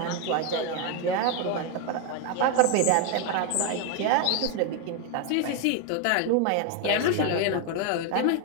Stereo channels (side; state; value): both; different; correlation 0.01